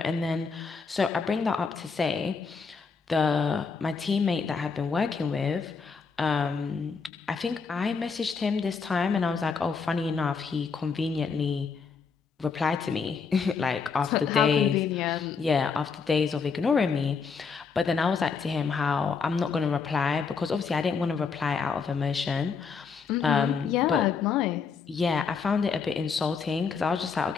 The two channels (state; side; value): quieter; right; 5.4 dB